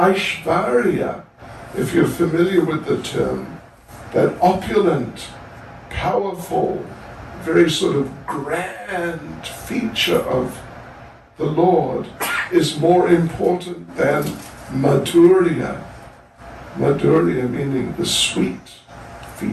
if you're familiar with the term, that opulent, powerful, very sort of grand feature of the Lord is more important than Madhurya. Madhurya meaning the sweet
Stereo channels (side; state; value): both; identical; correlation 1.00